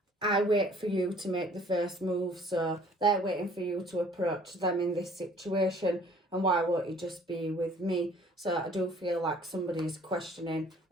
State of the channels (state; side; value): normal; both; correlation 0.55